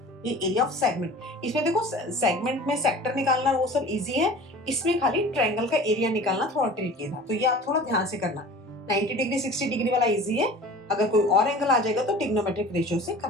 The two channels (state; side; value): normal; both; correlation 0.42